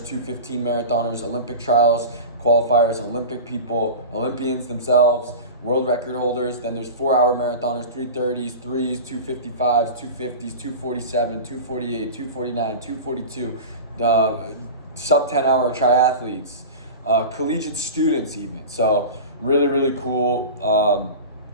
marathoners, Olympic trials, qualifiers, Olympic people, Olympians themselves, world record holders. Then there's 4-hour marathoners, 3:30s, 3s, 2:55s, 2:50s, 2:47, 2:48, 2:49, 2:42, sub 10-hour triathletes, collegiate students even. So really, really cool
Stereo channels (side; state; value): both; inverted; correlation -0.30